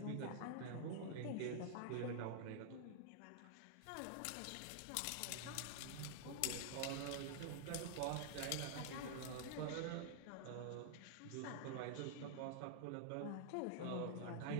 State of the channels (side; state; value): both; different; correlation -0.01